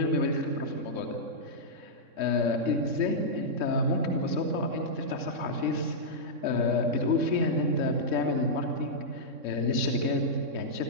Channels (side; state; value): left; late; 3.6 ms